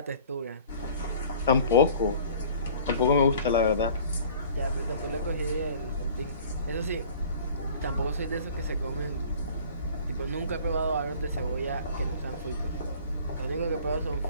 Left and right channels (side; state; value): both; inverted; correlation -0.48